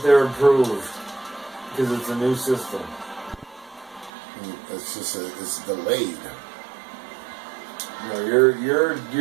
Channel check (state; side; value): drops out; left; at 4.1 s